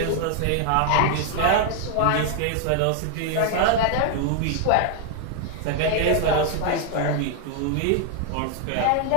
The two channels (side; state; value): both; different; correlation 0.00